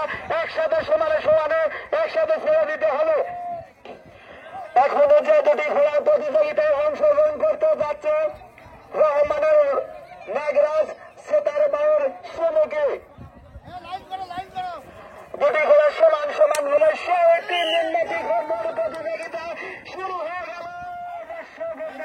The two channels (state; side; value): identical; both; correlation 1.00